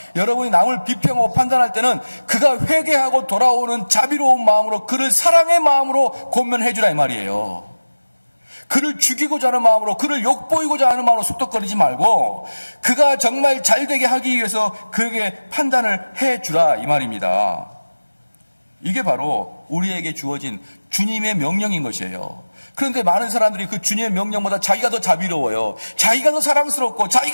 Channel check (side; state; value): both; inverted; correlation -1.00